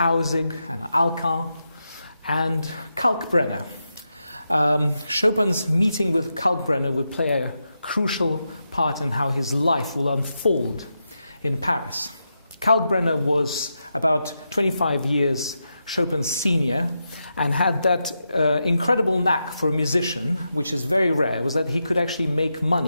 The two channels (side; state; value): both; inverted; correlation -0.87